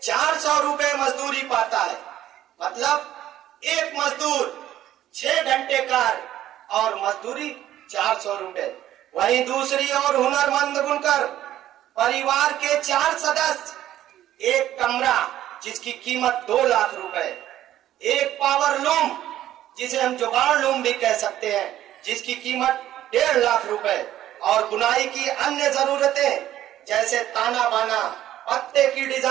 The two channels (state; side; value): quieter; left; 12.7 dB